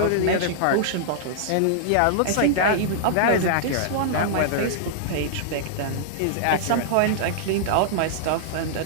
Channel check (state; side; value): different; both; correlation -0.01